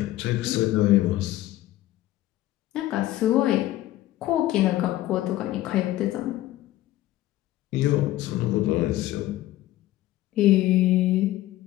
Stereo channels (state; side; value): quieter; right; 15.4 dB